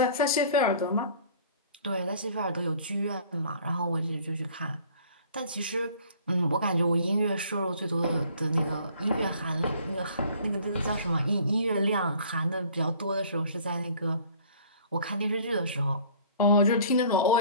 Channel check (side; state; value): both; inverted; correlation -0.52